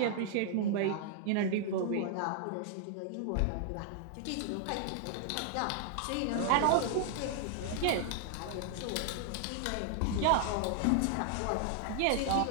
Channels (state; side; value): different; both; correlation 0.00